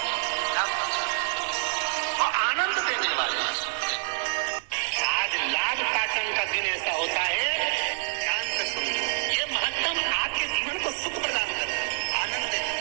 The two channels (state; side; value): silent; left; digital silence